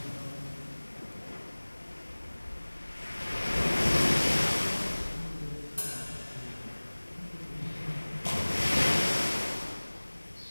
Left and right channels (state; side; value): inverted; both; correlation -1.00